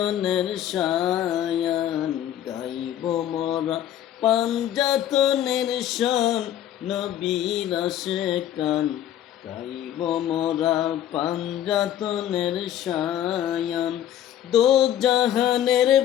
শায়ান, গাইব মোরা পাঞ্জাতনের শান, নবীর আশেকান। গাইব মোরা পাঞ্জাতনের শায়ান, দো জাহানের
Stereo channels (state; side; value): quieter; right; 11.3 dB